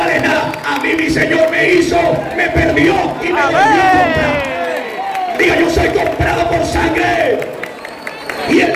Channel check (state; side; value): identical; both; correlation 1.00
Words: nada. A mí mi Señor me hizo, me perdió y me volvió a comprar. Diga: yo soy comprado por sangre, y